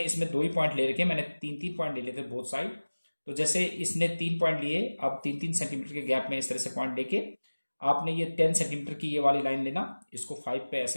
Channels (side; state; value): both; inverted; correlation -1.00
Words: इसमें 2 ही पॉइंट ले रखे, मैंने 3-3 पॉइंट ले लिए थे बोथ साइड। तो जैसे इसने 3 पॉइंट लिए, अब 3-3 सेंटीमीटर के गैप में इस तरह से पॉइंट लेके आपने ये 10 सेंटीमीटर की ये वाली लाइन लेना, इसको 5 पे